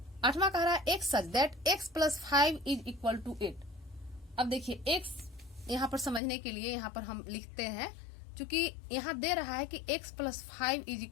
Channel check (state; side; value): drops out; right; at 6.2 s